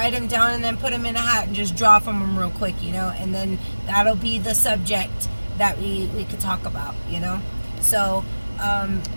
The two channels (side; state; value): both; inverted; correlation -1.00